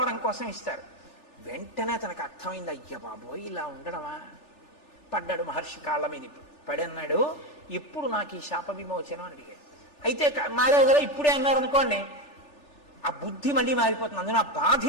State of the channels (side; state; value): right; late; 3.4 ms